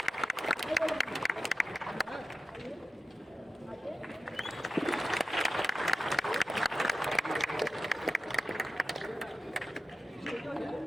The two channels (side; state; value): both; normal; correlation 0.90